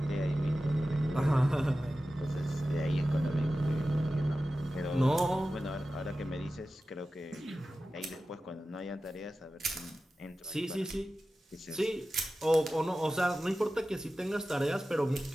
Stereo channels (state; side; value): normal; both; correlation 0.94